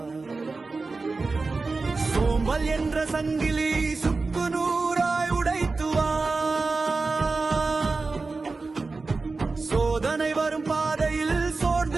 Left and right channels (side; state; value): left; quieter; 3.8 dB